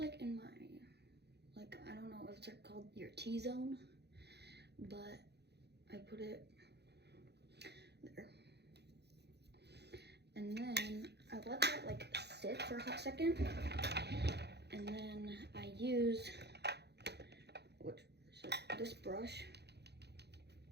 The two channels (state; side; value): late; left; 0.48 ms